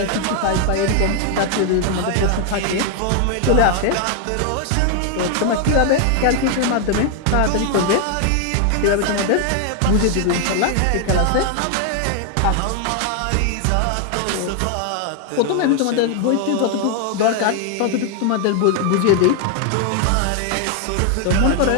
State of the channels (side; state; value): both; different; correlation 0.00